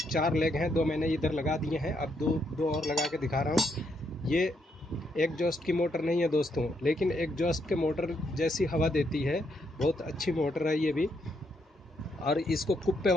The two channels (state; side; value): normal; both; correlation 0.76